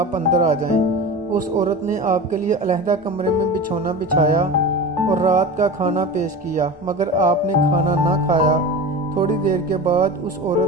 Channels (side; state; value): both; normal; correlation 0.30